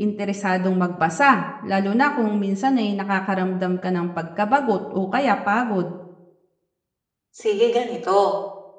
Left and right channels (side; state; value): both; identical; correlation 1.00